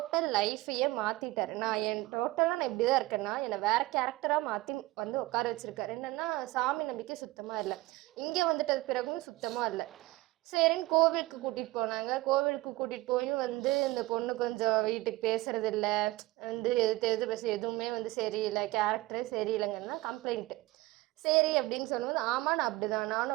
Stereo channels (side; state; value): left; quieter; 19.6 dB